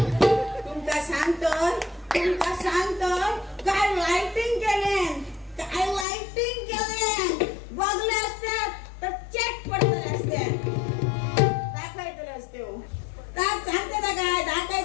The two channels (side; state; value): right; drops out; at 6.1 s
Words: तुमका सांगतो काय लाइटिंग केले, काय लाइटिंग केले. बघले असतात तर चेक पडतले असतात. दाखवायतले असते हो, सांगते ना काय